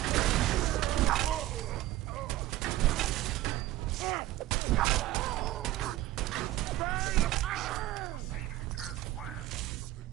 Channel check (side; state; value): left; quieter; 15.6 dB